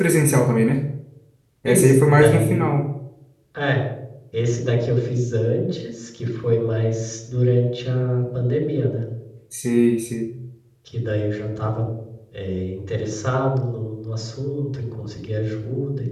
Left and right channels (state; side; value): identical; both; correlation 1.00